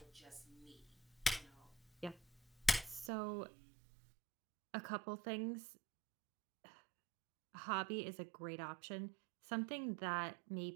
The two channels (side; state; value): left; drops out; at 3.1 s